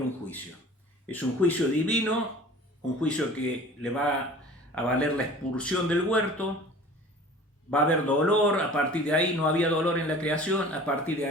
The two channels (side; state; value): both; normal; correlation 0.43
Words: juicio. Es un juicio divino un juicio que le va a valer la expulsión del huerto, va a haber dolor, a partir de ahí no había dolor en la creación, a partir de